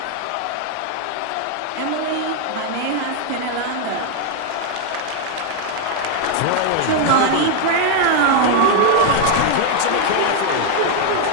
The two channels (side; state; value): both; different; correlation 0.00